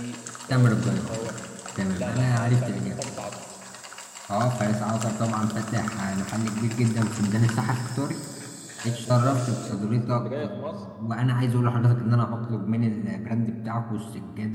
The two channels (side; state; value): both; identical; correlation 1.00